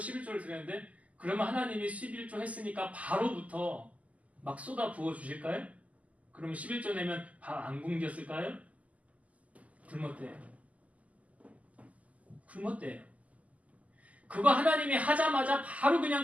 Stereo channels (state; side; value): late; left; 0.071 ms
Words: 드렸는데 그러면 하나님이 11조 했으니까 바로부터 막 쏟아 부어 주실까요? 그러면 11조 내면 밥 안 굶겼을까요? 굶었대요. 굶었대요. 그거 하나님이 하자마자 바로